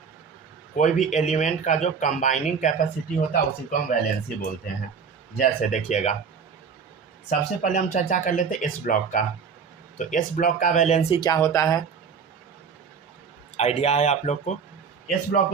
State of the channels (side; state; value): left; quieter; 6.1 dB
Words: कोई भी एलिमेंट का जो कंबाइनिंग कैपेसिटी होता है उसी को हम वैलेंसी बोलते हैं। जैसे देखिएगा, सबसे पहले हम चर्चा कर लेते हैं एस ब्लॉक का। तो एस ब्लॉक का वैलेंसी क्या होता है, आइडिया है आप लोग को? एस ब्लॉक